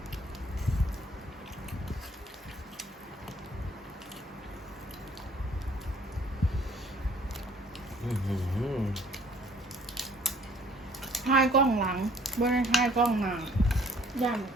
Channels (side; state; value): both; normal; correlation 0.57